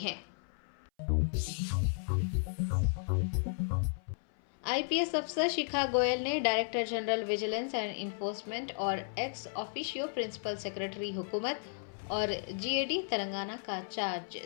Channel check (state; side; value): silent; right; 55 dB below the other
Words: आईपीएस अफसर शिखा गोयल ने director general vigilance and enforcement और एक्स ऑफिशियो प्रिंसिपल सेक्रेटरी हुकूमत और जीएडी तेलंगाना का चार्ज